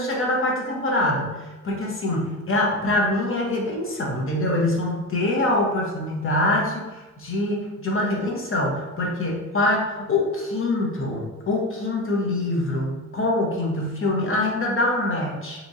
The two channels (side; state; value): both; normal; correlation 0.20